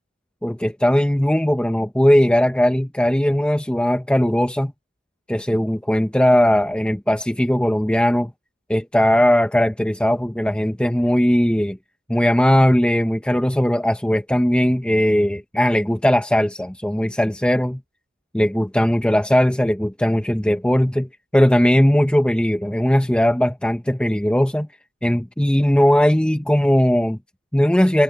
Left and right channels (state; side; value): normal; both; correlation 0.98